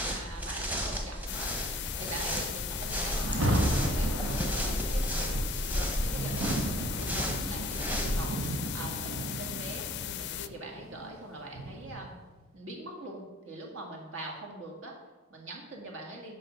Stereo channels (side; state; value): both; normal; correlation 0.53